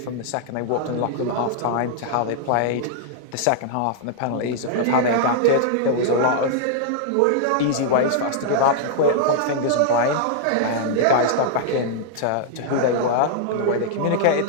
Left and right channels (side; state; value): both; different; correlation -0.01